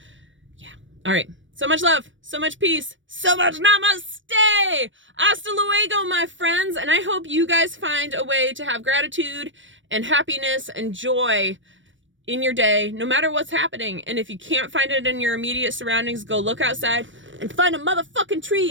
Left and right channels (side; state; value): left; late; 0.56 ms